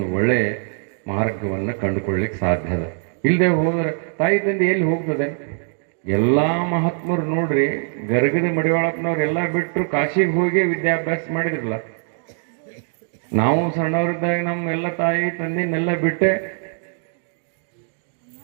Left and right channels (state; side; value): silent; left; 61 dB below the other